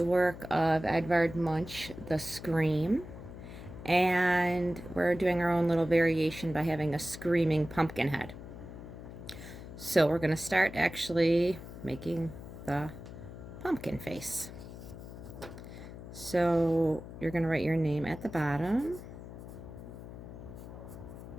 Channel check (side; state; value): left; noise; hum, 13 dB below the sound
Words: work of Edvard Munch, The Scream. And we're doing our own little variation by having a screaming pumpkin head. So we're going to start actually making the pumpkin face. So you're going to write your name at the bottom.